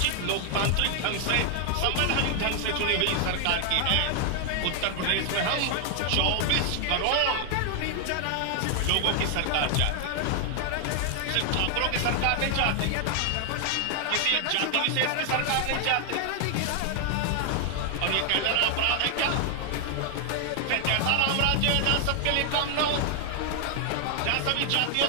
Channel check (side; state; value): both; different; correlation 0.00